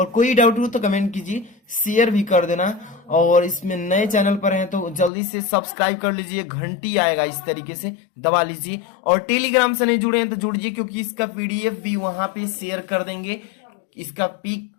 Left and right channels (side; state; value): right; drops out; at 5.1 s